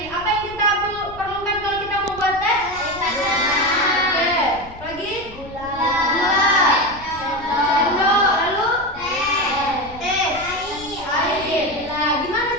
apa yang kita perlukan kalau kita mau buat teh? Oke, lagi? Gula. Sendok, lalu? Teh. Air. Nah, gimana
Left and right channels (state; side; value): noise; left; rumble, 18 dB below the sound